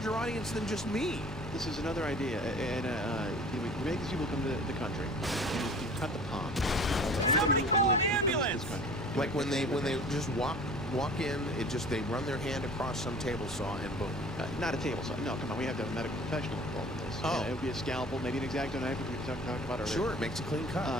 audience than just me. This is another idea, and you make these people come to the country, and you cut the palm. Somebody call an ambulance! Like when they just walk in, they run their hand across some table saw and boom. Not a table saw. No, come on, we have to have a medical professional involved in this. Oh. It would be a scalpel, maybe an X-Acto knife, which we talked about earlier. Sure, it makes a clean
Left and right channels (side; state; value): both; normal; correlation 0.45